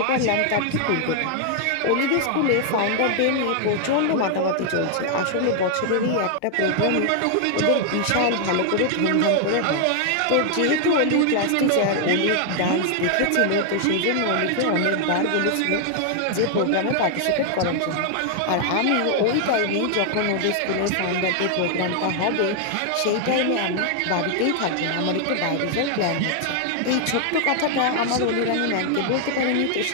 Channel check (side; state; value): both; different; correlation 0.00